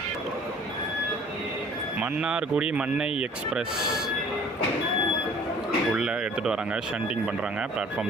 மன்னார்குடி மன்னை எக்ஸ்பிரஸ் உள்ளே எடுத்துகிட்டு வராங்க, ஷண்டிங் பண்ணுறாங்க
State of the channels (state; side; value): normal; both; correlation 0.51